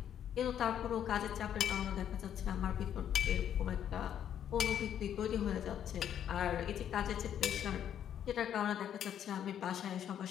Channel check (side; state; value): right; quieter; 9.7 dB